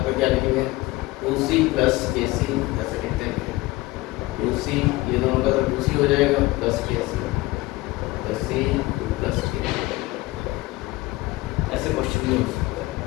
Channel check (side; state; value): right; quieter; 20.2 dB